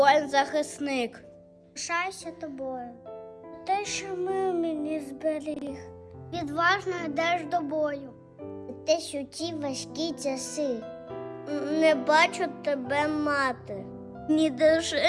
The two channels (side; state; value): both; identical; correlation 1.00